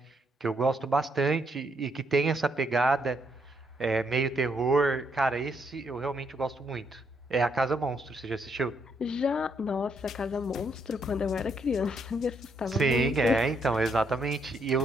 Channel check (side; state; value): both; normal; correlation 0.74